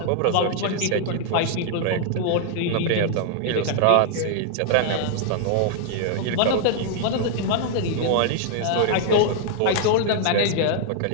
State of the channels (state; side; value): different; both; correlation -0.01